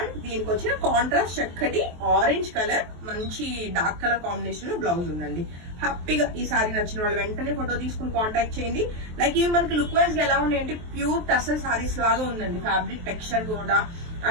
దీనికి వచ్చిన కాంట్రాస్ట్ చక్కటి ఆరెంజ్ కలర్ మంచి డార్క్ కలర్ కాంబినేషన్ లో బ్లౌజ్ ఉందండి. హ్యాపీగా ఈ శారీ నచ్చిన వాళ్ళు వెంటనే ఫోటో తీసుకుని కాంటాక్ట్ చేయండి. లైక్ ఇవి మనకి లుక్ వైజ్ గా ఎలా ఉన్నాయంటే ప్యూర్ టసల్ శారీస్ లాగా ఉందండి. ఫ్యాబ్రిక్ టెక్స్చర్ కూడా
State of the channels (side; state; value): left; late; 23 ms